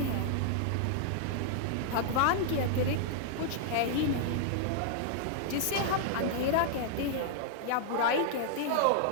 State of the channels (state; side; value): different; both; correlation -0.01